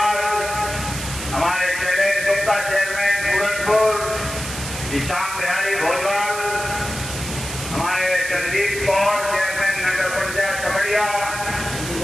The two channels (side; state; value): right; noise; hiss, 8 dB below the sound